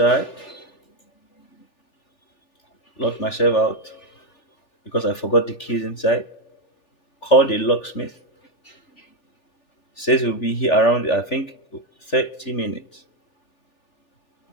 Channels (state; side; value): late; right; 3.4 ms